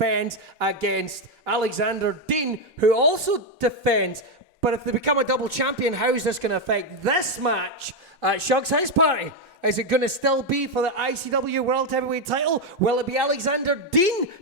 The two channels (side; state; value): both; normal; correlation 0.05